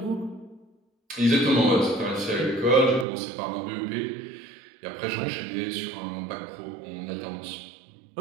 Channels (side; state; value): left; drops out; at 3.1 s